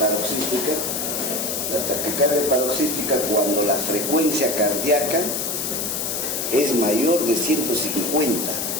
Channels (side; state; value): left; noise; hiss, 2 dB below the sound